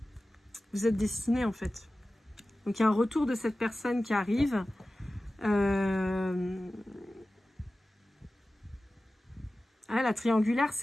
destiné, en fait. Donc, il y a un retour de cette personne qui arrive. Ah, la triangulaire,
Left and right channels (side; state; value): both; normal; correlation 0.96